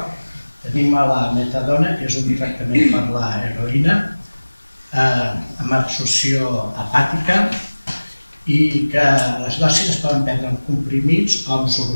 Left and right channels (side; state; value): both; inverted; correlation -1.00